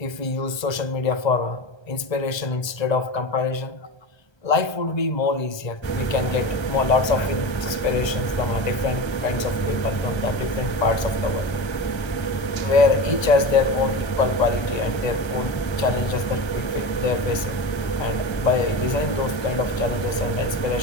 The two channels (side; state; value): right; late; 1.3 ms